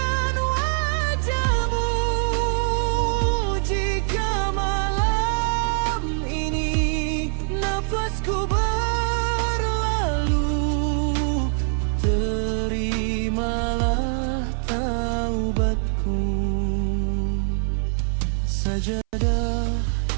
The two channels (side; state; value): left; silent; 60 dB below the other